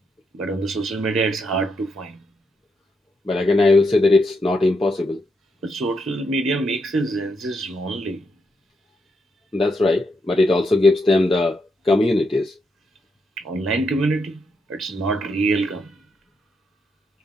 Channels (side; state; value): both; normal; correlation 0.81